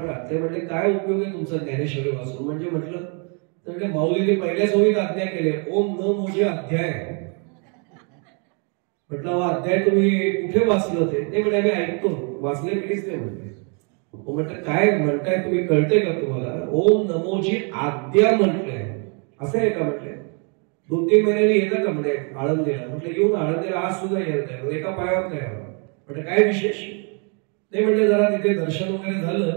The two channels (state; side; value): quieter; left; 37.6 dB